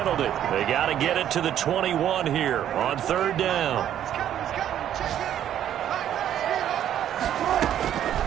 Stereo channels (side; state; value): left; quieter; 10.7 dB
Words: They got to get it to the 21 here on 3rd down.